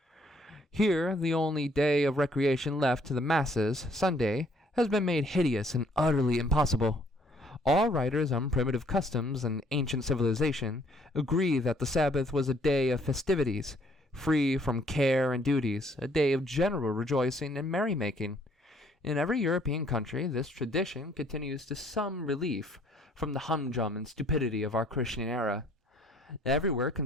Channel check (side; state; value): both; normal; correlation 0.63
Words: Here, the only day of recreation left to the masses, Sunday, has been made hideous and utterly impossible. All writers on primitive customs and ancient civilization agree that the Sabbath was a day of festivities, free from care and duties, a day of general rejoicing and merrymaking. In every European country, this tradition continues to some relief from the humdrum and stupidity of our Christian era. Everywhere